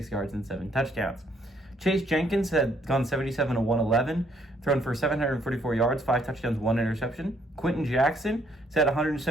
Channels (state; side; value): normal; both; correlation 0.68